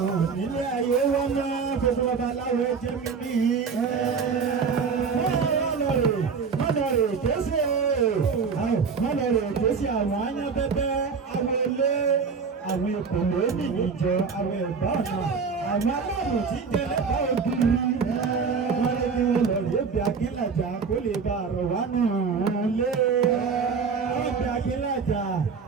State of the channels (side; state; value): left; quieter; 5.5 dB